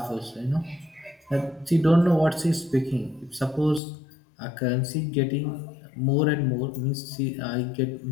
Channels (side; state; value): right; drops out; at 3.8 s